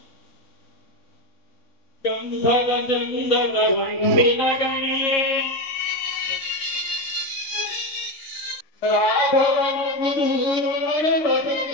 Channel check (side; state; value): right; late; 3.6 ms